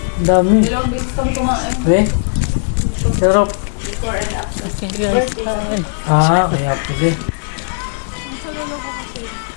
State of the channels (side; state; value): right; silent; digital silence